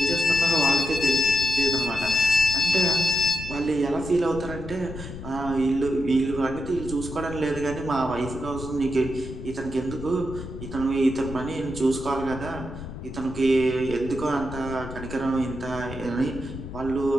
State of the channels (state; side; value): noise; left; rumble, 10 dB below the sound